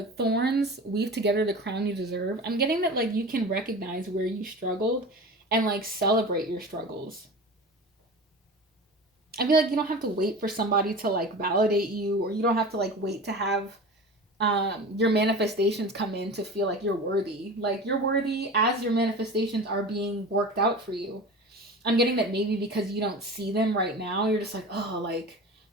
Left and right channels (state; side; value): normal; both; correlation 0.33